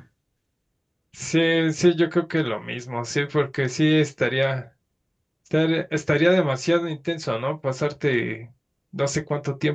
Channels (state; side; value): identical; both; correlation 1.00